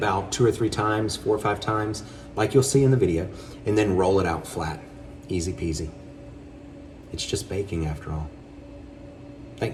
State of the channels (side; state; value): both; identical; correlation 1.00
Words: 2 or 3 times, 4 or 5 times, like you'll see in the video, and then roll it out flat. Easy peasy. It's just baking after all.